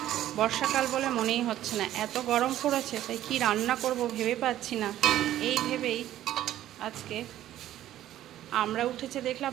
বর্ষাকাল বলে মনেই হচ্ছে না, এত গরম পড়েছে। তাই কি রান্না করব ভেবে পাচ্ছি না। এই ভেবেই আজকে আমরা উঠেছে দেখলাম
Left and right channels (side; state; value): left; quieter; 12.9 dB